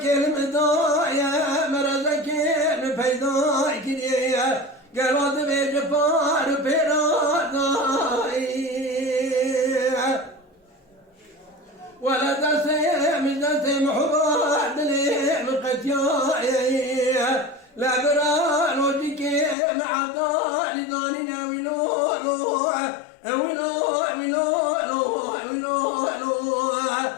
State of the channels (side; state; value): right; drops out; at 19.6 s